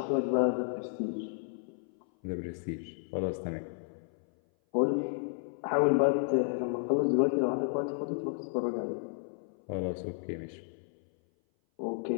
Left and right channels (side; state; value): right; silent; 56 dB below the other